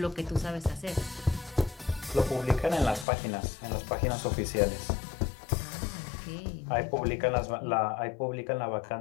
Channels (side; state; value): right; drops out; at 3.1 s